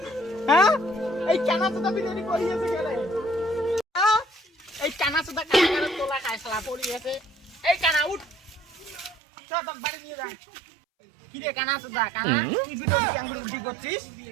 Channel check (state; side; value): drops out; left; at 9.2 s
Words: হ্যাঁ এই কানা সুদা বিরিয়ানি করিয়েছে গেলে এই কানা সুদা কানা তোলা খায় শালা পড়িয়েছে এই কানা উঠ চল তোর বাড়ি নিয়ে যা কি রে কানা সুদা কানা কি ভিডিও আঙ্গুল উল্টি করছিস